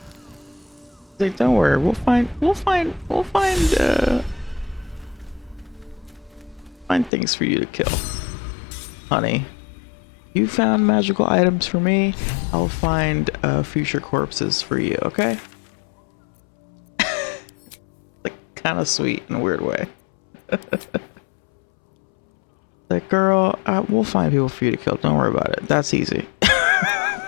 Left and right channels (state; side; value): drops out; right; at 7.1 s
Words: Like, don't worry, we'll find things for you to kill, honey. You found magical items for me. I'll find future corpses for you. Okay? Like, kind of sweet in a weird way. Like, girl, we'll find people for you to kill. Don't worry about it. That's easy.